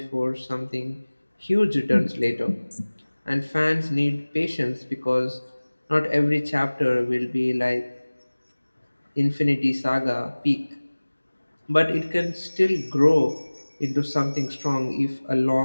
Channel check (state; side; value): inverted; both; correlation -1.00